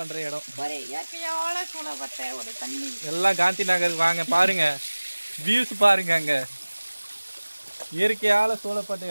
இடம். எல்லாம் காந்தி நகருக்கு வாங்க. பாருங்க வியூஸ் பாருங்க, அங்கே இயற்கையால் சூழப்பட்ட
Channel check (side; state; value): both; inverted; correlation -1.00